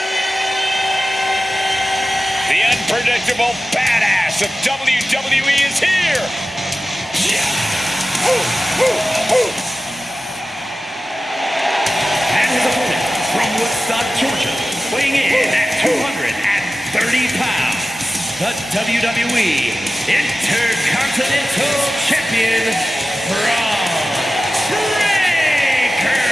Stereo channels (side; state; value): both; normal; correlation 0.95